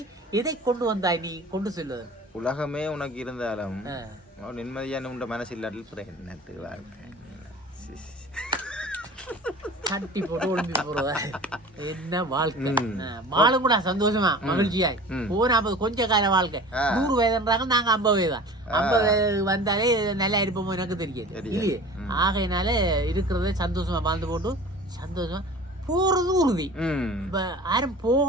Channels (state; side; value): normal; both; correlation 0.40